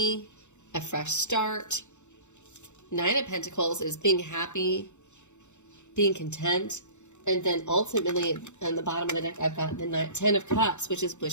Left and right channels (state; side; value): late; right; 0.84 ms